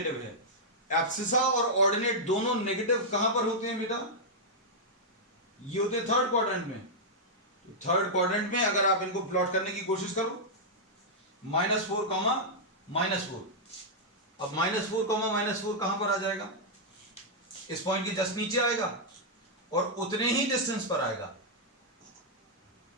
है। एब्सिसा और ऑर्डिनेट दोनों नेगेटिव कहां पर होते हैं बेटा, ये होते हैं थर्ड क्वाड्रेंट में। तो थर्ड क्वाड्रेंट में अगर आप इनको प्लॉट करने की कोशिश करो, -4, -4। अब -4, -4 कहां पर आ जाएगा, इस पॉइंट के जस्ट नीचे आएगा और उतने ही डिस्टेंस पर आएगा।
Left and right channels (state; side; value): normal; both; correlation -0.06